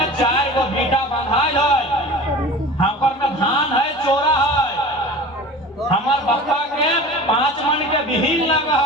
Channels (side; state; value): both; normal; correlation 0.38